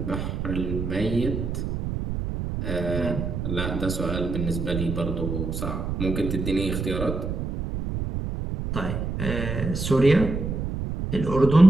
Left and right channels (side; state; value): right; noise; rumble, 3 dB below the sound